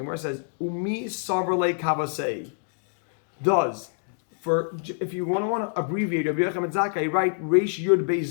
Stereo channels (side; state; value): right; silent; digital silence